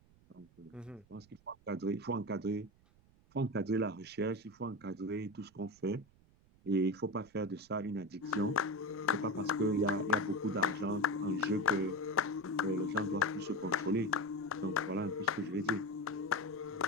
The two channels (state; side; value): noise; right; rumble, 29 dB below the sound